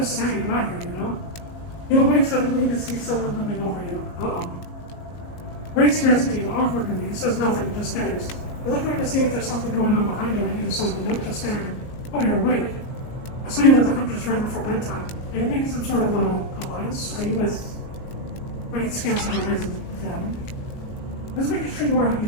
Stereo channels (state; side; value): late; right; 19 ms